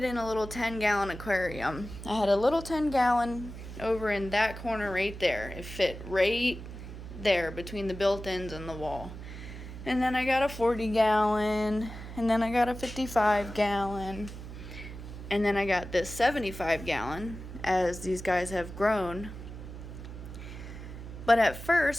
in a little 10-gallon aquarium. I had a little 10-gallon over in that corner right there. It fit right there between the built-ins and the wall. And then I got a 40-gallon, and then I got a 55-gallon, and then I got this 75-gallon as these guys have grown. But at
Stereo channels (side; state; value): right; noise; hum, 11 dB below the sound